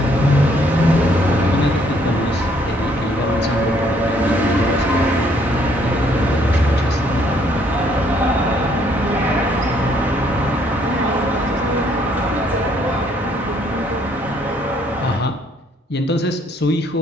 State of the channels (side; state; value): both; normal; correlation 0.66